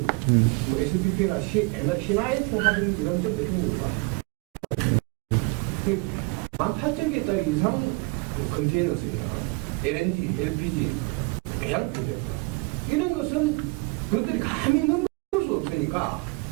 뭐 SPP나 옛날 신화에서 하던 이런 점도 중국을 봐. 18,000개짜리 이상 컨테이너 쓰기나 LNG, LPG, 배양 프로젝트 이런 것은 그것들이 감히 넘을 수 없으니까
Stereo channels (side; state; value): left; quieter; 27.5 dB